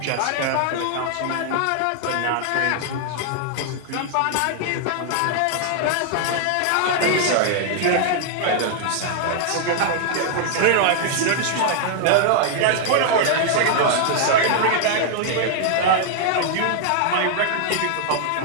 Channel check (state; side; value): different; both; correlation 0.00